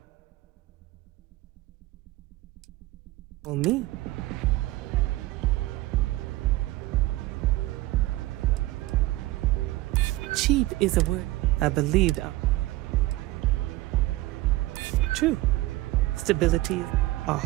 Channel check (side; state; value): left; quieter; 18.5 dB